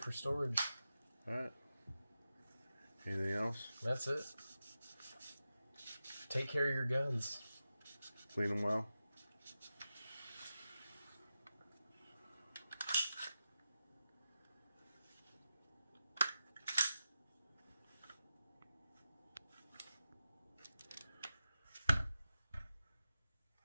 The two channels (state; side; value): inverted; both; correlation -0.91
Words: for storage. All right. Anything else? That's it. Take care of your guns. Clean them well.